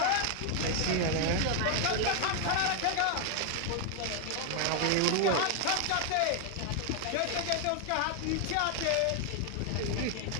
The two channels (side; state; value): both; different; correlation 0.00